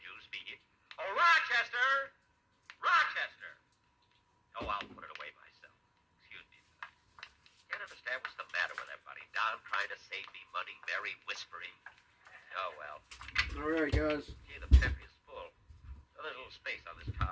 be... Oh, Rochester! Rochester! Oh, I'll put it away myself. Excuse me. Can't understand what's the matter with everybody. Don trying to save me money, Mary whispering. Oh, well. All right, guys. Gee, the pantry is full. Oh, there's a little space on this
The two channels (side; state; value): both; identical; correlation 1.00